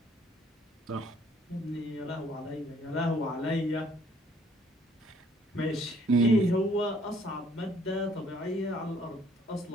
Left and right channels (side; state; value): both; normal; correlation 0.62